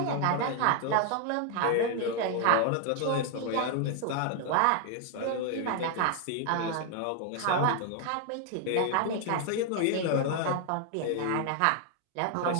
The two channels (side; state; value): both; different; correlation 0.00